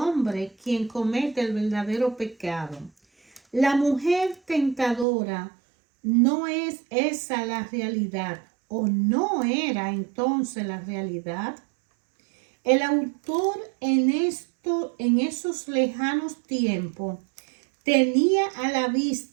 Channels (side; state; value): left; drops out; at 5.1 s